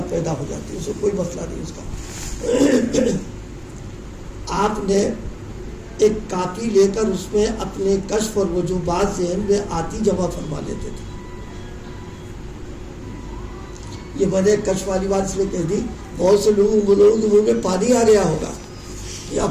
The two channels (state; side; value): identical; both; correlation 1.00